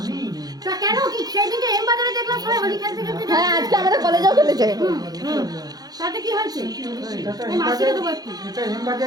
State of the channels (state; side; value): late; left; 0.19 ms